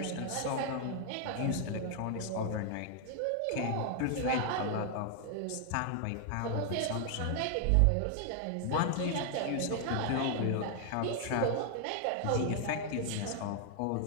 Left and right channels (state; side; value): different; both; correlation 0.00